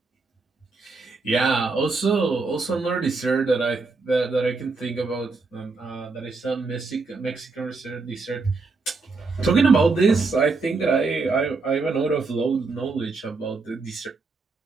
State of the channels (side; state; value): left; quieter; 4.0 dB